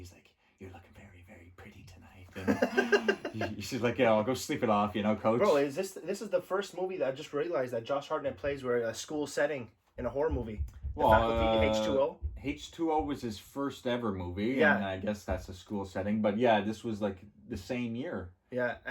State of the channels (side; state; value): both; identical; correlation 1.00